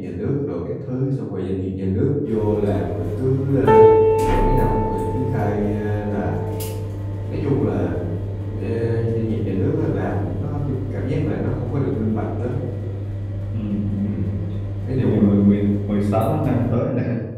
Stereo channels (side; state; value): both; identical; correlation 1.00